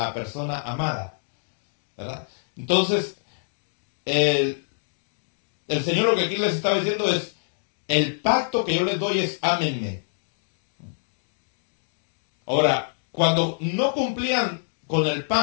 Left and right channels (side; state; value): right; silent; digital silence